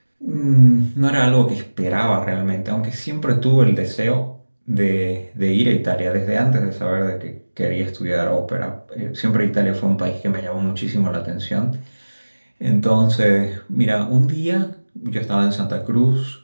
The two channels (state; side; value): inverted; both; correlation -1.00